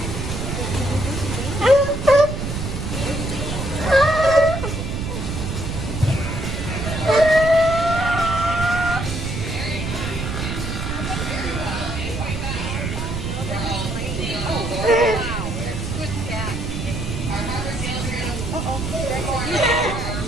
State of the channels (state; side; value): noise; right; rumble, 4 dB below the sound